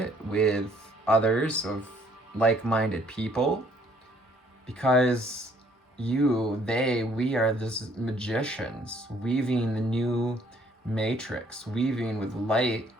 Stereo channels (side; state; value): both; normal; correlation 0.63